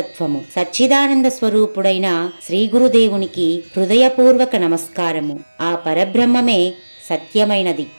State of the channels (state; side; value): inverted; both; correlation -1.00